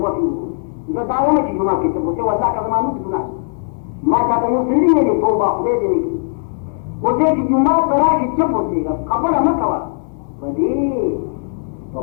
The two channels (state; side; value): silent; right; digital silence